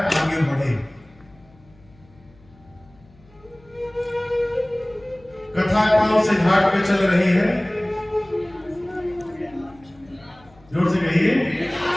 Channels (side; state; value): left; noise; hum, 28 dB below the sound